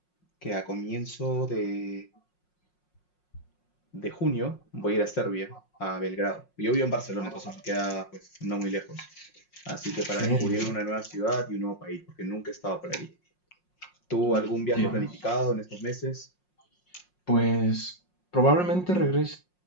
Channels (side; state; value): right; late; 5.5 ms